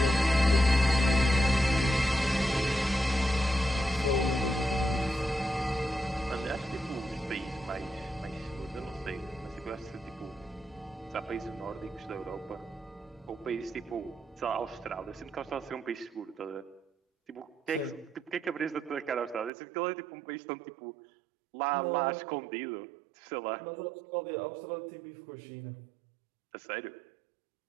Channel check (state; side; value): drops out; left; at 19.5 s